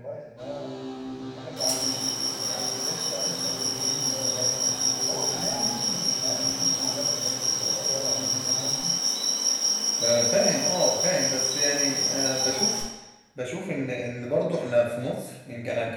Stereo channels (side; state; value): both; identical; correlation 1.00